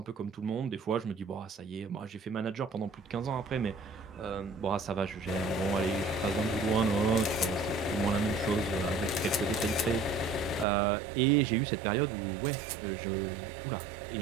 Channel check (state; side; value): drops out; left; at 10.7 s